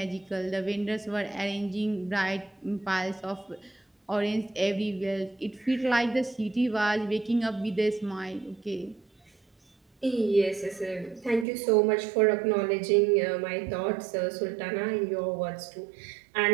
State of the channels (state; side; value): drops out; left; at 11.5 s